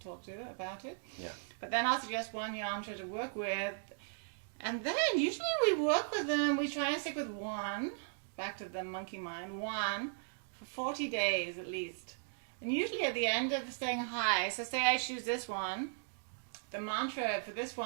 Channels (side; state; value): left; silent; digital silence